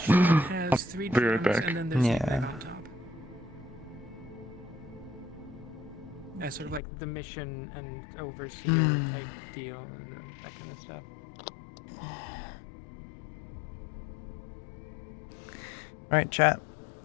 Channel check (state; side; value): drops out; right; at 6.8 s